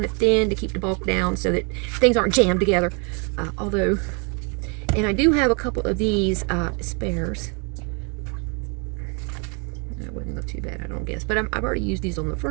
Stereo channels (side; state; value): left; quieter; 34.8 dB